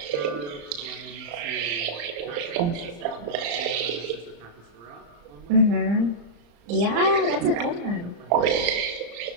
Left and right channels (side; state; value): left; late; 35 ms